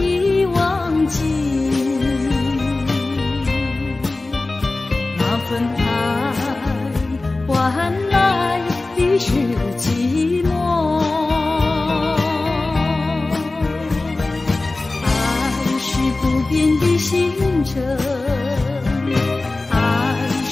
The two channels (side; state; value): right; quieter; 3.2 dB